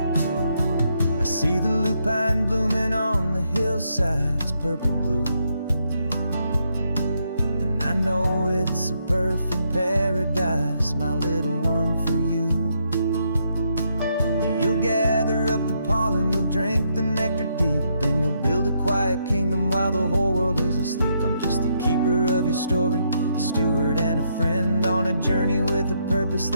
I see the lupine blooming on the hillsides, purple blue, I know it's a perfect paradise, my little one, for you. You'll gather up the pollen, you'll drink the nectar deep, and you'll build a quiet kingdom while the whole world is asleep. I'm just the keeper of your story, a steward and a friend, on a journey with a purpose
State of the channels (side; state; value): both; inverted; correlation -0.77